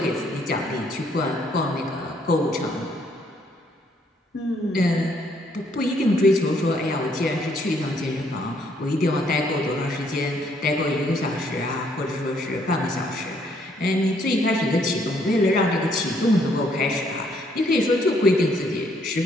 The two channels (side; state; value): both; normal; correlation 0.68